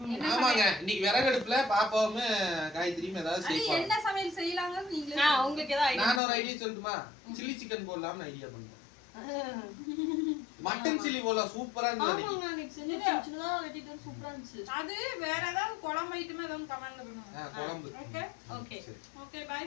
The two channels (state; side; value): drops out; right; at 6.2 s